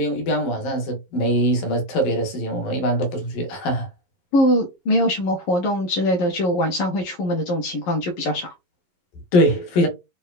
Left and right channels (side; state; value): right; late; 11 ms